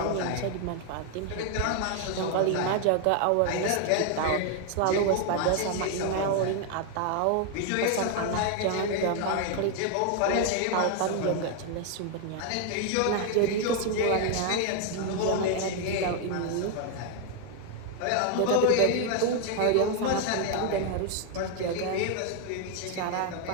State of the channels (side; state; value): both; different; correlation 0.00